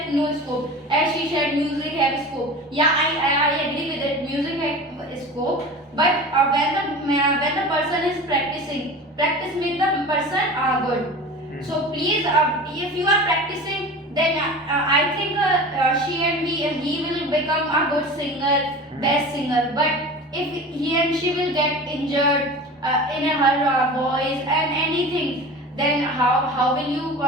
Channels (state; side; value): normal; both; correlation 0.34